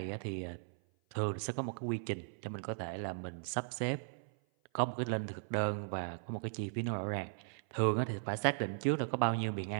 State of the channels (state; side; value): silent; left; 53 dB below the other